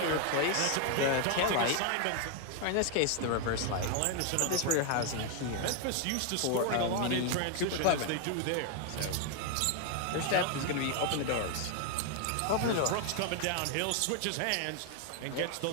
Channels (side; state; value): both; different; correlation 0.01